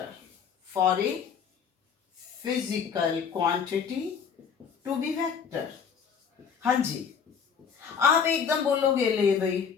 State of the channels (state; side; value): quieter; right; 6.7 dB